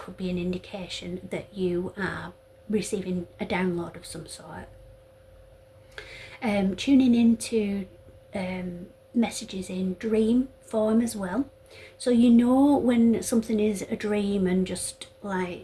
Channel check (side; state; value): both; identical; correlation 1.00